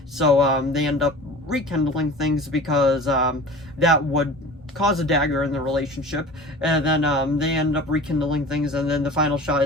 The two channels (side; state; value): both; normal; correlation 0.39